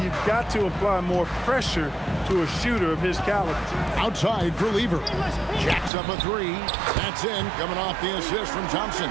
you've got to apply more pressure to a shooter of his caliber. Outside for Lever. Jacks up a three. That's in, coming off the assist from Thompson.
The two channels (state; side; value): drops out; left; at 5.9 s